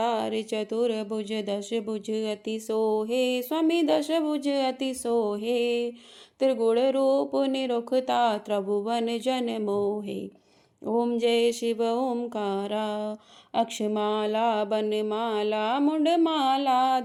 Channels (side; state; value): both; identical; correlation 1.00